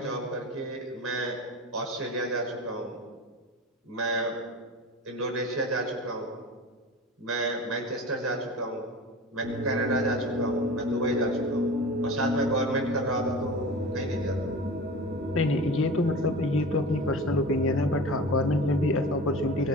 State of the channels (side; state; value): both; normal; correlation 0.33